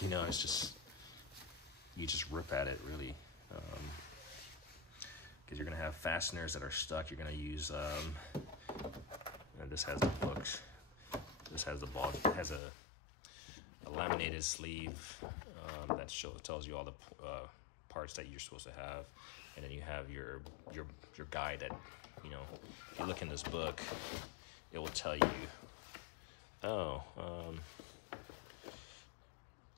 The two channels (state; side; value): drops out; right; at 12.6 s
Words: know, it's just, you just rip at it really. Because you're gonna have fasteners that are stuck. You're gonna use, and this has the books. This has the ball, it has a laminated sleeve that tells you all the parts that you're supposed to have. And then you have your guide that, you know, if you look in this book, it will tell you, oh,